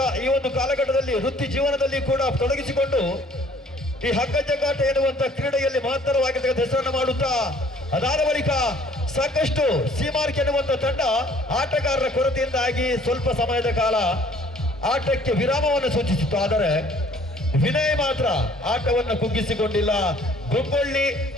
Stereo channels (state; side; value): normal; both; correlation 0.57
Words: ಈ ಒಂದು ಕಾಲಘಟ್ಟದಲ್ಲಿ ವೃತ್ತಿ ಜೀವನದಲ್ಲಿ ಕೂಡ ತೊಡಗಿಸಿಕೊಂಡು ಈ ಹಗ್ಗ ಜಗ್ಗಾಟ ಎನ್ನುವಂತ ಕ್ರೀಡೆಯಲ್ಲಿ ಮಹತ್ತರವಾಗಿರ್ತಕ್ಕಂಥ ಹೆಸರನ್ನು ಮಾಡುತ್ತಾ ಅದಾದ ಬಳಿಕ ಸಾಕಷ್ಟು ಸೀಮಾರ್ಕ್ ಎನ್ನುವಂತ ತಂಡ ಆಟಗಾರರ ಕೊರತೆಯಿಂದಾಗಿ ಸ್ವಲ್ಪ ಸಮಯದ ಕಾಲ ಆಟಕ್ಕೆ ವಿರಾಮವನ್ನು ಸೂಚಿಸಿತ್ತು. ಆದರೆ ವಿನಯ್ ಮಾತ್ರ ಆಟವನ್ನು ಕುಗ್ಗಿಸಿಕೊಂಡಿಲ್ಲ. ಗುಬ್ಬಳ್ಳಿ,